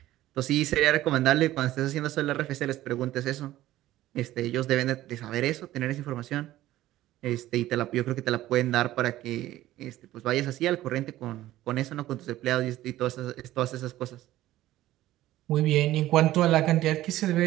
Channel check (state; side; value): quieter; left; 15.0 dB